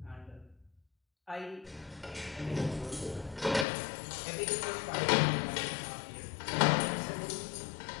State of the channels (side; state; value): right; drops out; at 3.7 s